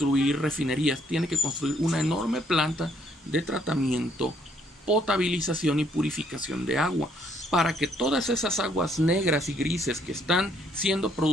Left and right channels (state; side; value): normal; both; correlation 0.68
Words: refinerías, tiene que construir una enorme planta de tratamiento, potabilización y purificación de agua, para que todas esas aguas negras y grises que están siendo